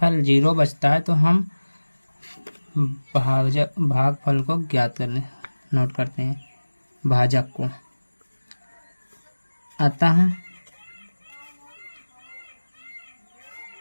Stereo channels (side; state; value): both; inverted; correlation -1.00